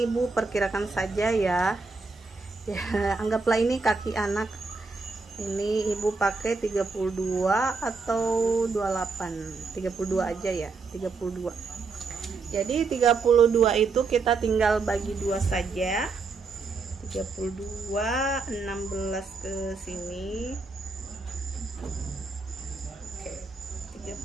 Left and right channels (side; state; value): left; quieter; 4.2 dB